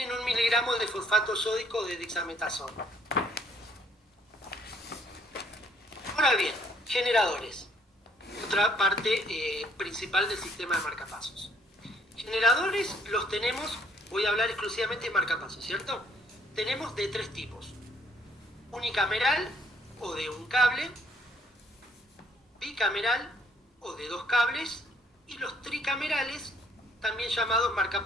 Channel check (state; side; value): normal; both; correlation 0.65